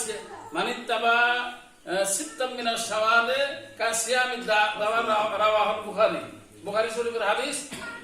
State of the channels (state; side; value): identical; both; correlation 1.00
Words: মানে তাবা সিত্তাম মিনাশ শাওয়ালে কাজ সিয়ামের দাওয়া রাওয়াহুল বুখারী, বুখারী শরীফের হাদিস।